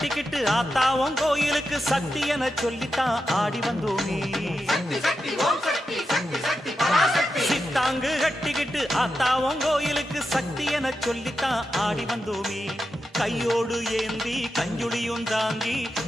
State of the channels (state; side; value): normal; both; correlation 0.88